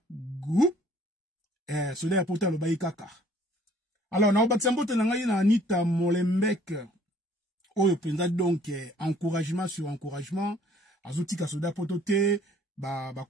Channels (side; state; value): both; normal; correlation 0.57